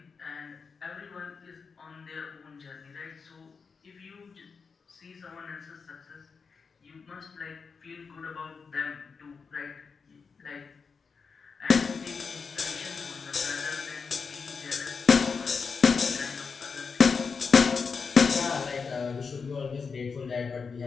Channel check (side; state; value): right; quieter; 5.3 dB